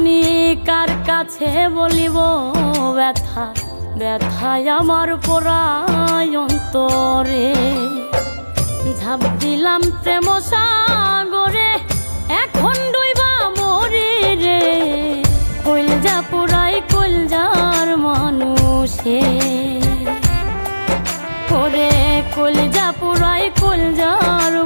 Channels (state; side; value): inverted; both; correlation -1.00